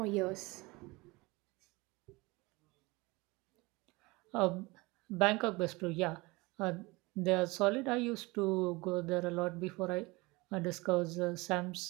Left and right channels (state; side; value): quieter; left; 23.6 dB